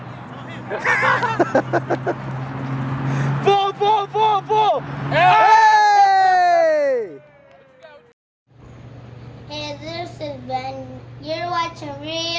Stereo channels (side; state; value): both; identical; correlation 1.00